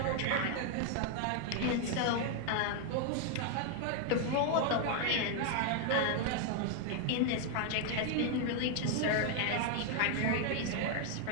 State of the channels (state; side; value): different; both; correlation 0.00